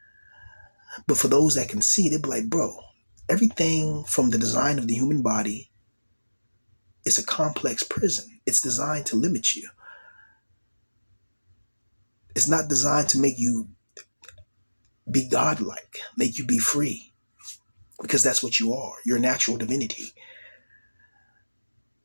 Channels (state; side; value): inverted; both; correlation -1.00